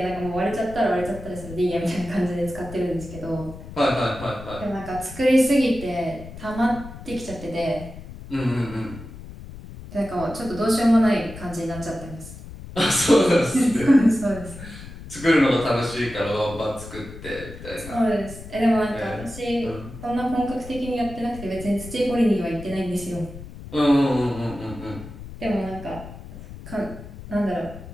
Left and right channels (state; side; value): noise; left; rumble, 14 dB below the sound